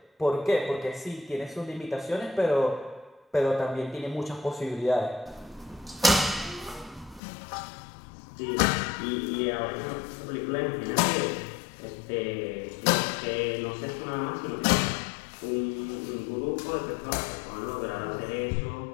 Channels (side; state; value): right; drops out; at 7.2 s